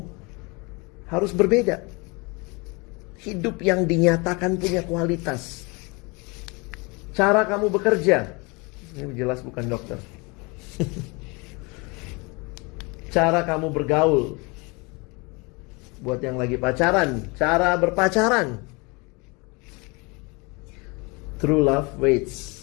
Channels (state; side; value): quieter; right; 28.1 dB